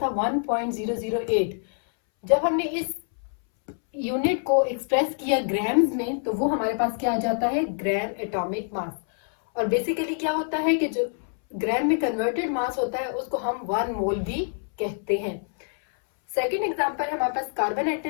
था 1.008। जब हमने इस यूनिट को एक्सप्रेस किया ग्राम्स में तो वो हमारे पास क्या आ जाता है, ग्राम एटॉमिक मास। और बेसिकली क्या होता है कि जो ग्राम में कन्वर्टेड मास होता है उसको हम 1 मोल भी कहते हैं। सेकेंड एग्जांपल है हमारे पास कार्बन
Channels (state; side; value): silent; right; 61 dB below the other